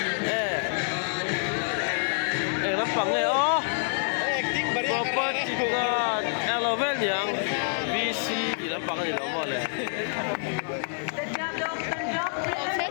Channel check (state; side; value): silent; right; 55 dB below the other